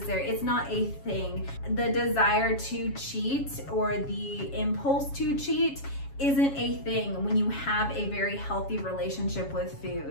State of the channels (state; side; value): late; right; 7.2 ms